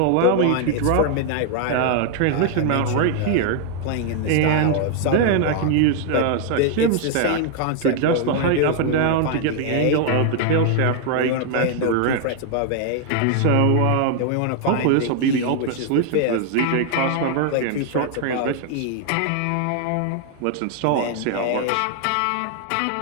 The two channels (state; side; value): different; both; correlation 0.00